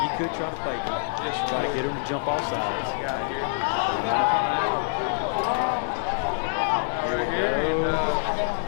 you could try to fake him. Yes, you try to could. get him to jump off sides. Guy here. Here we And, go.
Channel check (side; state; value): right; silent; digital silence